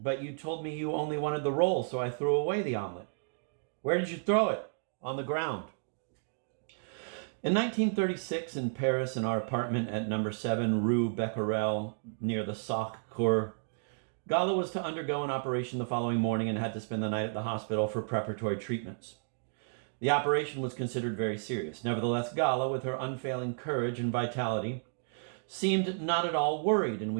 you told me you only wanted the roll, so I threw away the omelet." "Where did you throw it?" "On the ground." In 1936, in Paris, in our apartment at number 7 Rue Becquerel, near the Sacre-Cœur, Gala was to undergo an operation the following morning and had to spend the night at the hospital for preparatory treatments. The operation was considered very serious. Nevertheless, Gala, with her unfailing courage and vitality, seemed not at all worried, and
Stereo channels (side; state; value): left; silent; digital silence